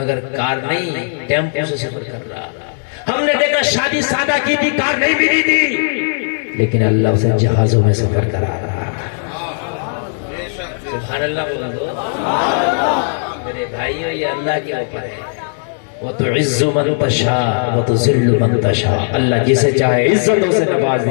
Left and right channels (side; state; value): right; silent; digital silence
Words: कार नहीं, टेम्पो से सफर कर रहा। हमने देखा शादी सादा की थी, कार नहीं मिली थी, लेकिन अल्लाह उसे जहाजों में सफर करा रहा। सुभान अल्लाह बोल दो मेरे भाइयों, ये अल्लाह के ऊपर है। वो तो इज्जु मन तशा वो तो जिल्लु मन तशा। अल्लाह जिसे चाहे इज्जतों से नवाज